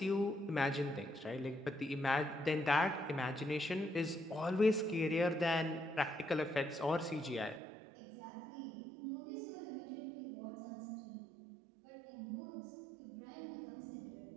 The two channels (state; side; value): drops out; left; at 7.6 s